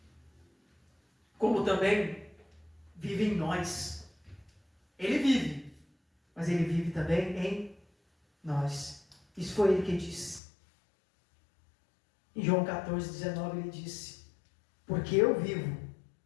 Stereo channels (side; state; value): right; drops out; at 10.4 s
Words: como também vive em nós. Ele vive, mas Ele vive também em nós. Isso foi Ele que disse. Em João 14:19 Ele disse: porque eu vivo,